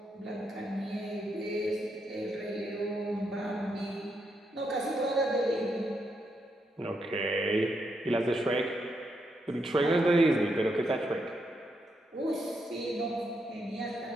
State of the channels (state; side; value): normal; both; correlation 0.80